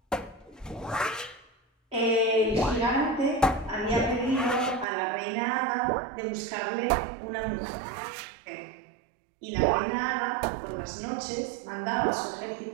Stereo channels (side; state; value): left; drops out; at 4.9 s